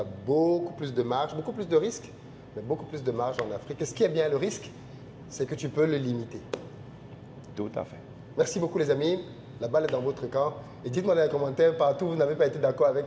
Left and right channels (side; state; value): both; identical; correlation 1.00